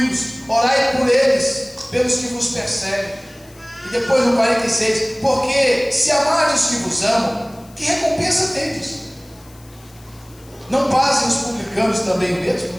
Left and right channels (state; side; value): noise; left; hiss, 26 dB below the sound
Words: orai por eles, pelos que vos perseguem. E depois no 46, porque se amarem os que vos amam, que recompensa tendes? Não fazem os publicanos também o mesmo?